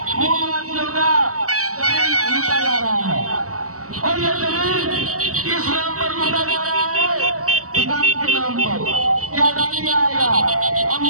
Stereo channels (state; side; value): late; left; 0.65 ms